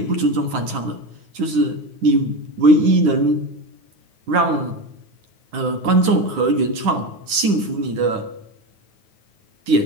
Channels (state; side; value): late; left; 10 ms